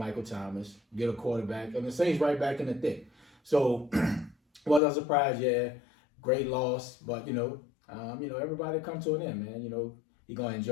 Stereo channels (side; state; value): right; drops out; at 4.8 s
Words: Thomas, get a quarterback, and the Saints right back in the thick. So, was I surprised? Yeah, great loss, but everybody come to an end, man. He's gonna